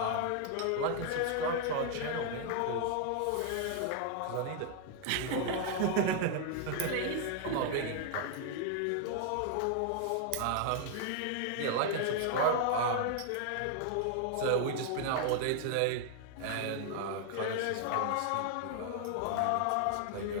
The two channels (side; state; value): both; different; correlation 0.00